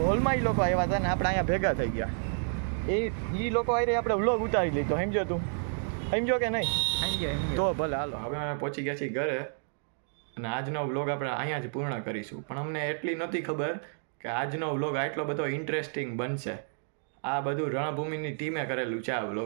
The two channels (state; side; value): silent; left; digital silence